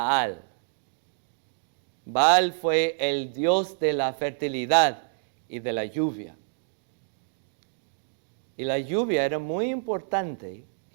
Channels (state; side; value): silent; left; digital silence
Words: Baal fue el dios de la fertilidad y de la lluvia. Y la lluvia era muy importante